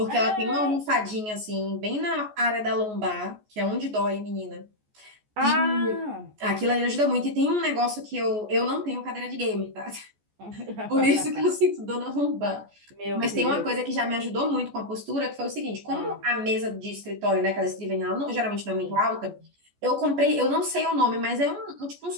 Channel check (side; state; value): left; late; 14 ms